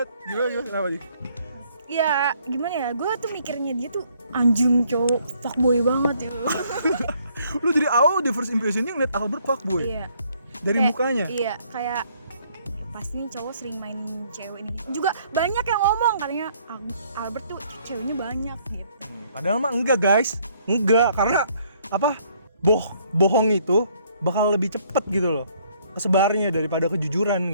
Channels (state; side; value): inverted; both; correlation -0.65